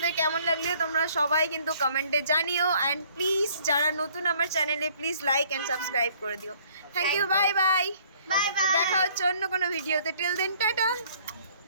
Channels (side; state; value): both; inverted; correlation -0.60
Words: কেমন লাগলো তোমরা সবাই কিন্তু কমেন্টে জানিও, অ্যান্ড প্লিজ যারা নতুন আমার চ্যানেলে প্লিজ লাইক অ্যান্ড সাবস্ক্রাইব করে দিও। Thank you, bye bye. Bye bye. দেখা হচ্ছে অন্য কোনো ভিডিওতে। Till then tata.